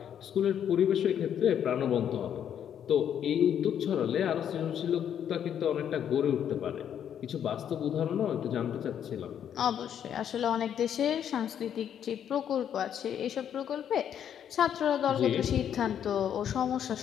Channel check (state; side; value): quieter; right; 9.2 dB